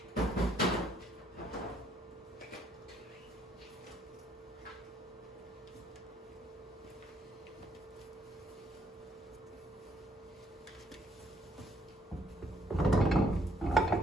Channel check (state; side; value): normal; both; correlation 0.68